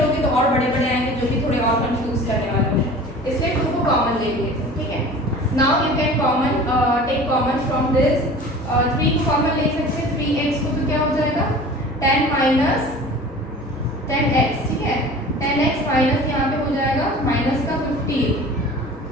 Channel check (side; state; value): both; normal; correlation 0.40